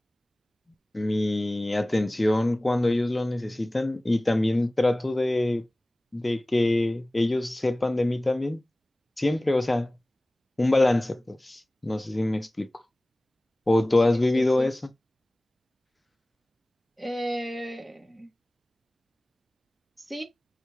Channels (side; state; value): both; normal; correlation 0.98